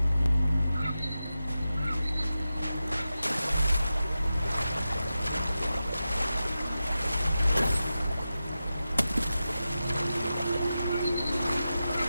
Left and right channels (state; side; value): inverted; both; correlation -0.92